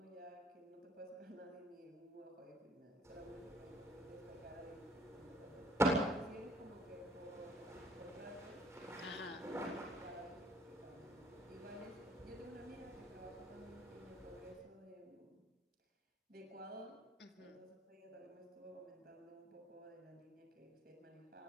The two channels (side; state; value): both; normal; correlation 0.59